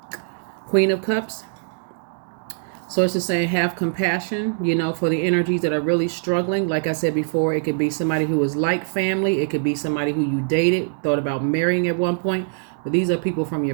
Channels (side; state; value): left; silent; digital silence